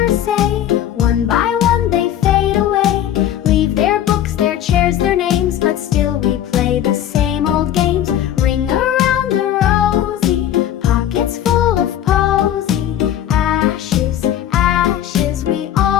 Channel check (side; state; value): right; quieter; 11.2 dB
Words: say. One by one they fade away. Leave their books, their chairs, their names, but still we play the same old games. Ring around the rosy, pockets full of posy. Ashes, ashes, we